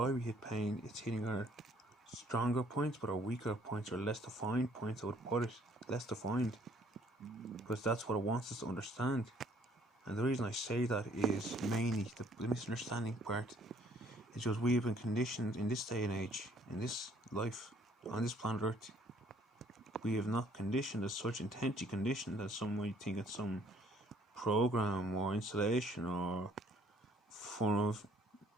we hit pain. It's hitting our stronger points, but our weaker points, or less defined points, I would put it. Less defined. Because that's what it wants us to understand. And the reason I say that is mainly the misunderstanding part. It's just we have been conditioned in this day and age, in this life, on this planet Earth. We have not conditioned as such, intensely conditioned, that some might think it's some program or installation or form of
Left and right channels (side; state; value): both; normal; correlation 0.61